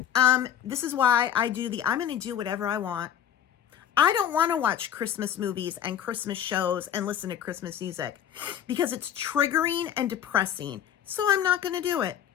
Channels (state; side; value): quieter; right; 9.9 dB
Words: This is why I'm going to do whatever I want. I don't want to watch Christmas movies and Christmas shows and listen to Christmas music because it's triggering and depressing. So I'm not going to do it.